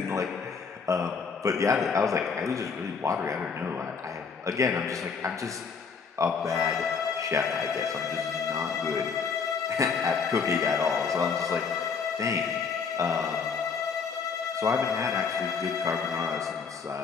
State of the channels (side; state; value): right; quieter; 5.6 dB